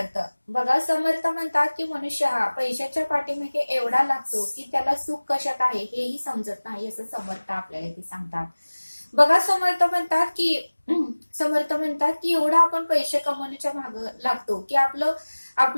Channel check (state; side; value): inverted; both; correlation -1.00